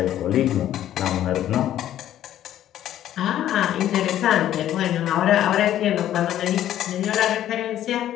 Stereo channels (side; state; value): right; quieter; 11.9 dB